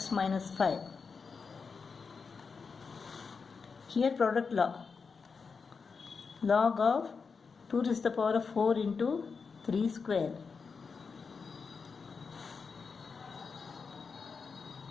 minus 5. Here product law. Log of 2 raised to the power of 4 into 3 square.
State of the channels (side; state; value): right; quieter; 5.2 dB